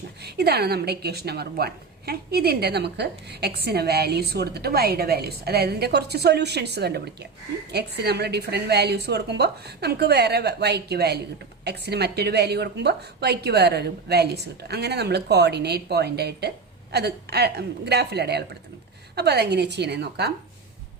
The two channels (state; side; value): quieter; left; 4.6 dB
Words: ഇതാണ് നമ്മുടെ ഇക്വേഷൻ നമ്പർ 1. ഇതിൻ്റെ നമുക്ക് എക്സിന് വാല്യൂസ് കൊടുത്തിട്ട് വൈയുടെ വാല്യൂസ്, അതായത് ഇതിൻ്റെ കുറച്ച് സൊല്യൂഷൻസ് കണ്ടുപിടിക്കാം. എക്സിന് നമ്മൾ ഡിഫറെൻറ്റ് വാല്യൂസ് കൊടുക്കുമ്പോൾ നമുക്ക് വേറെ വൈക്ക് വാല്യൂ കിട്ടും, എക്സിന് മറ്റൊരു വാല്യൂ കൊടുക്കുമ്പോൾ വൈക്ക് വേറൊരു വാല്യൂസ് കിട്ടും. അങ്ങനെ നമ്മൾ കോർഡിനേറ്റ് പോയിൻ്റായിട്ട് അത് ഗ്രാഫിൽ അടയാളപ്പെടുത്തുന്നത്. അപ്പോൾ അതെങ്ങനെയാണ് ചെയ്യണമെന്ന് നോക്കാം.